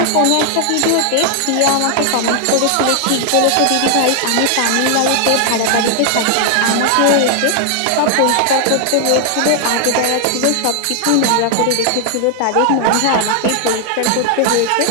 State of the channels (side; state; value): both; different; correlation 0.00